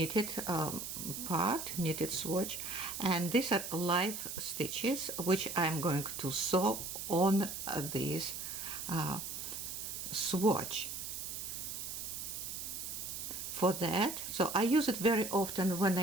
part, knitted swatch, and these are live stitches which I'm going to sew on this swatch. For that, so I use it very often when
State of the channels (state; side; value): noise; right; hiss, 6 dB below the sound